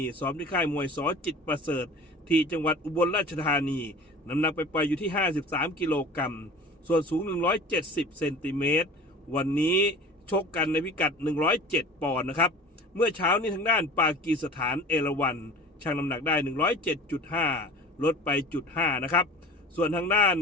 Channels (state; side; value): normal; both; correlation 0.40